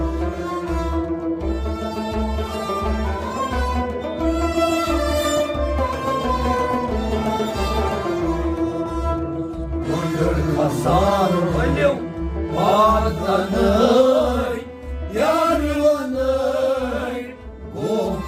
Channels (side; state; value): both; identical; correlation 1.00